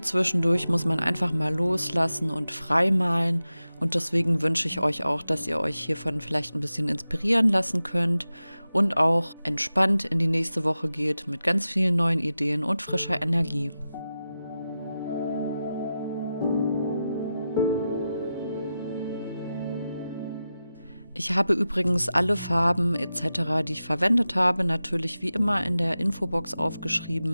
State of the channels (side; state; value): both; inverted; correlation -0.92